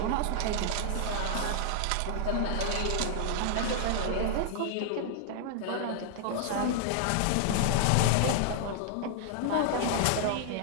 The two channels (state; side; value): different; both; correlation -0.01